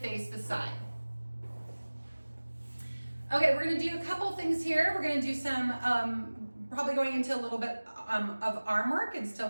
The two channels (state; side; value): inverted; both; correlation -1.00